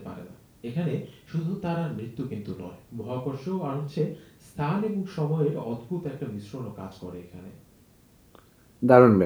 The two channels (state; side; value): identical; both; correlation 1.00